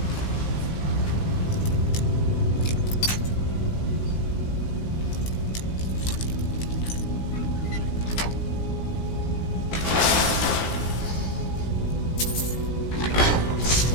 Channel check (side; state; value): right; late; 17 ms